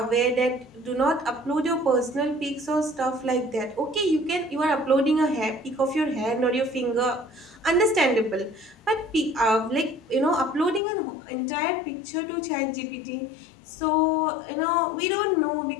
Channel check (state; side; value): drops out; right; at 10.8 s